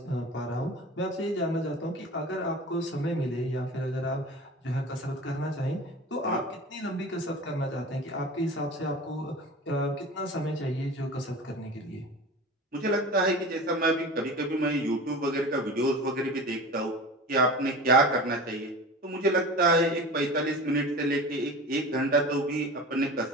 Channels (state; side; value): normal; both; correlation 0.35